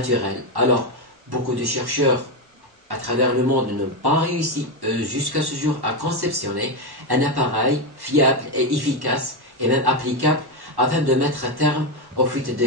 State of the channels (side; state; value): left; late; 1.1 ms